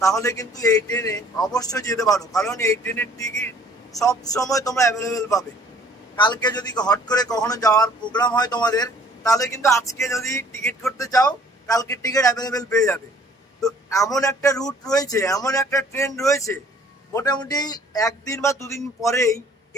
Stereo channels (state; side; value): normal; both; correlation 0.56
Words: তাহলে কিন্তু এই ট্রেনে অবশ্যই যেতে পারো, কারণ এই ট্রেনের টিকিট সব সময় তোমরা অ্যাভেলেবেল পাবে। কালকে যদি হট করে কখনো যাওয়ার প্রোগ্রাম হয় তোমাদের, তাহলে কিন্তু আজকে যদি টিকিট করতে চাও কালকে টিকিট অ্যাভেলেবেল পেয়ে যাবে। তো এমন একটা রুট রয়েছে, এমন একটা ট্রেন রয়েছে, মোটামুটি একদিন বা দুদিন পরেই